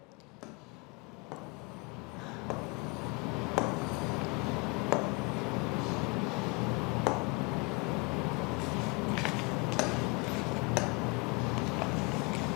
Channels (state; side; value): quieter; right; 30.0 dB